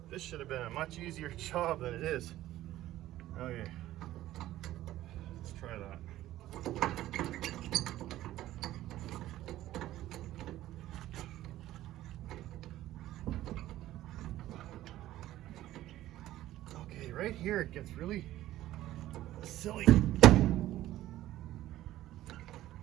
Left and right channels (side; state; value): left; quieter; 14.5 dB